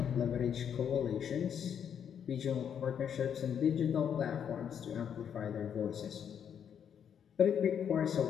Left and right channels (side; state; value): right; quieter; 8.3 dB